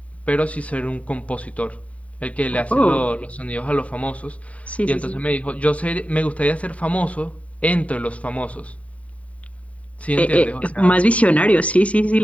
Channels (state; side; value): late; right; 0.067 ms